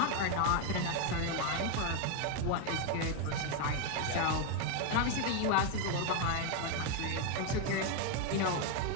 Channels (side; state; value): both; different; correlation 0.01